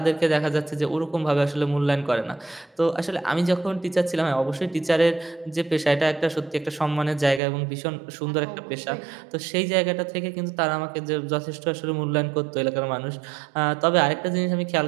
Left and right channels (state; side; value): drops out; left; at 7.4 s